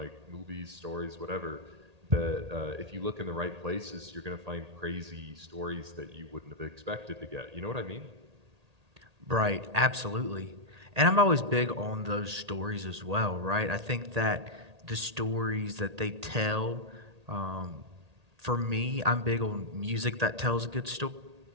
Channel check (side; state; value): left; late; 1.8 ms